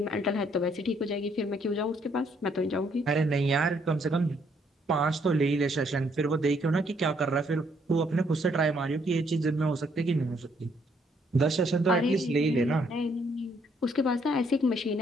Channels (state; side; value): normal; both; correlation 0.69